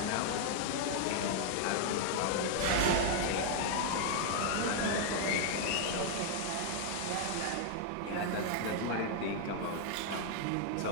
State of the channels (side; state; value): both; different; correlation 0.00